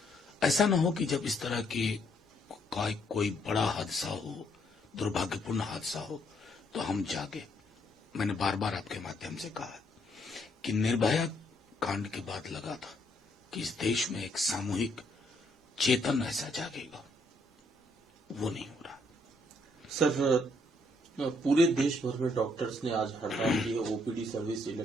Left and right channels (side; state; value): both; normal; correlation 0.71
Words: ऐसा ना हो कि जब इस तरह के कोई बड़ा हादसा हो, दुर्भाग्यपूर्ण हादसा हो, तो हम जागे। मैंने बार बार आपके माध्यम से कहा कि निर्भया कांड के बाद लगा था कि इस देश में एक सामूहिक चेतन ऐसा जागेगा, वो नहीं हो रहा। सर, पूरे देश भर में डॉक्टर्स ने आज हड़ताल की है। ओपीडी सर्विस,